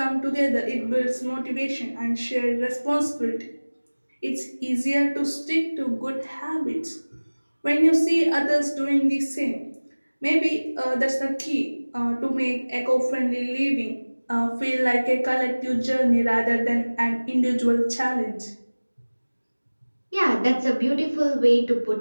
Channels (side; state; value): both; inverted; correlation -1.00